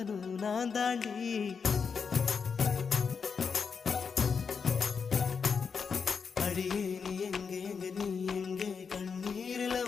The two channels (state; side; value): quieter; right; 5.8 dB